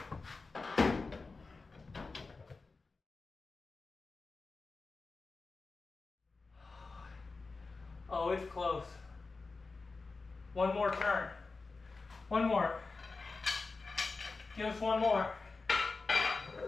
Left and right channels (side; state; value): right; quieter; 4.0 dB